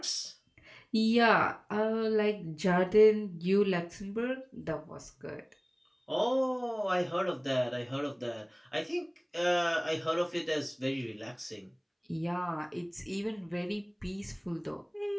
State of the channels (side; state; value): both; identical; correlation 1.00